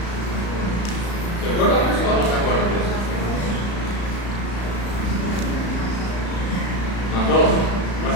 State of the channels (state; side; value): late; right; 35 ms